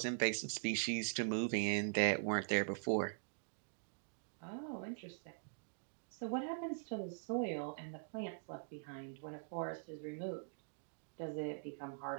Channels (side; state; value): left; silent; digital silence